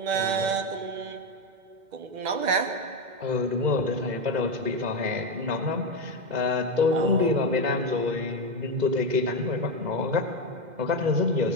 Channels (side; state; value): left; late; 2.0 ms